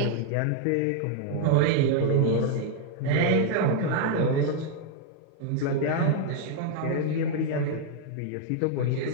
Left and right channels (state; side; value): different; both; correlation 0.00